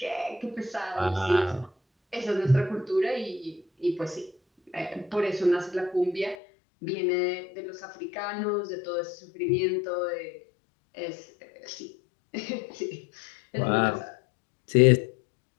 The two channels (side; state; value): right; drops out; at 6.4 s